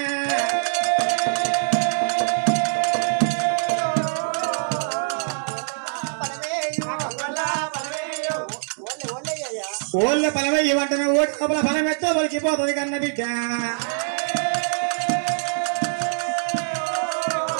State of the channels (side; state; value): left; silent; digital silence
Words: ఓళ్ళ ఫలమయ్యి వంటను ఓటి కపల ఫలం ఎత్తో ఒలికిపోతుంది కన్న బిడ్డ